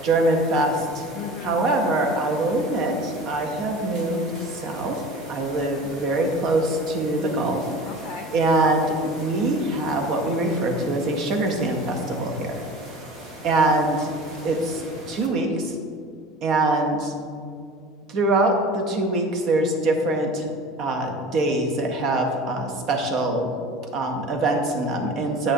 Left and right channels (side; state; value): both; normal; correlation 0.38